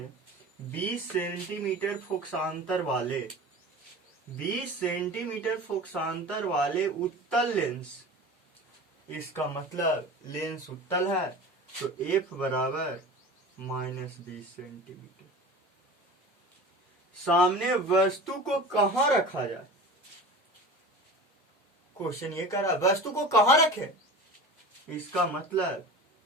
20 सेंटीमीटर फोकसांतर वाले 20 सेंटीमीटर फोकसांतर वाले उत्तल लेंस, इसका मतलब लेंस उत्तल है तो F बराबर -20 सेंटीमीटर। सामने वस्तु को कहां रखा जाए? क्वेश्चन ये कह रहा है वस्तु को कहां रखे, इसका मतलब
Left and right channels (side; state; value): both; normal; correlation 0.35